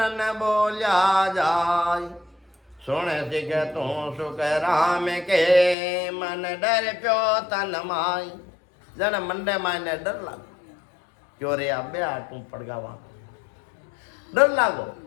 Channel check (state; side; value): drops out; right; at 5.8 s